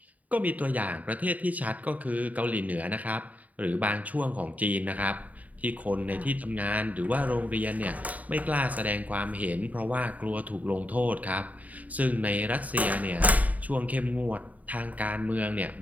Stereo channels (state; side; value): late; left; 0.073 ms